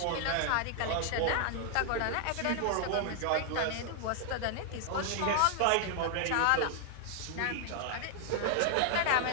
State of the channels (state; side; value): different; both; correlation 0.00